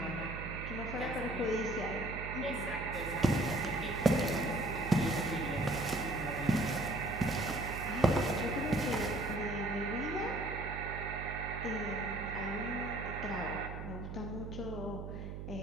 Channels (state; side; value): noise; right; hum, 7 dB below the sound